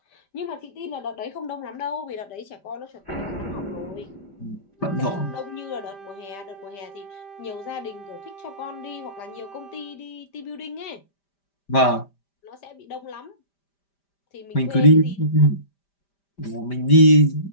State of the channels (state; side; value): late; right; 5.1 ms